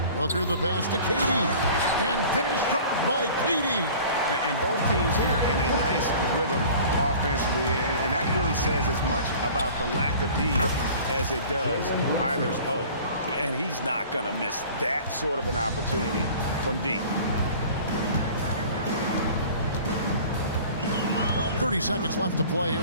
Booker the pass to Katie. And finished off by Katie. And both teams here in a nice rhythm offensively, and that really says as much about the lack of D as it does either's O. And he's not going to miss that sort of an opportunity from D. 30 seconds left to play here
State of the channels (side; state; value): both; inverted; correlation -0.44